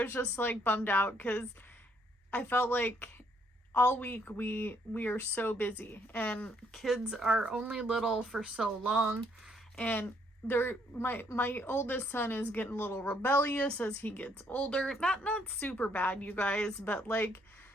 was just like bummed out because I felt like all week we are so busy, and kids are only little for so long, and my oldest son is getting a little rebellious as he gets older. Not super bad, you guys, but like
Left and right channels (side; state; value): both; normal; correlation 0.69